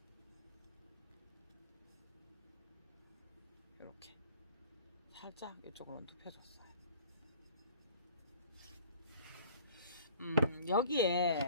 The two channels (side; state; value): both; inverted; correlation -0.50